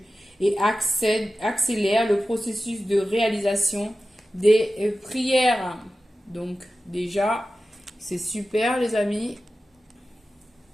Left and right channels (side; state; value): both; normal; correlation 0.94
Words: et accélère le processus de réalisation des prières. Donc, déjà, c'est super les amis.